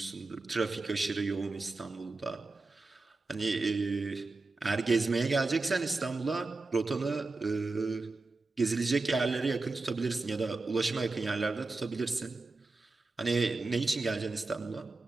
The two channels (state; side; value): quieter; left; 3.5 dB